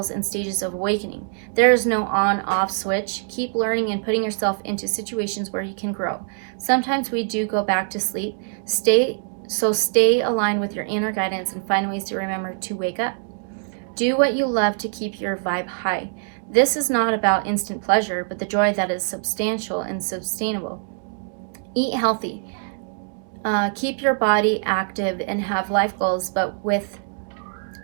and stages of awakening. There is no on-off switch. Keep learning and putting yourself into situations where you can grow. Sometimes we do go back to sleep. Stay aligned with your inner guidance and find ways to remember to wake up. Do what you love to keep your vibe high. This is not about instant pleasure, but the joy that is substantial and sustainable. Eat healthy. Keep your body active and have life goals, but with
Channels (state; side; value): silent; left; 62 dB below the other